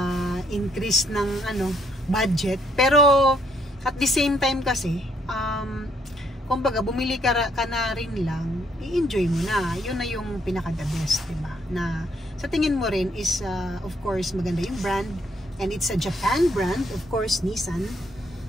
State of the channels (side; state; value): both; normal; correlation 0.70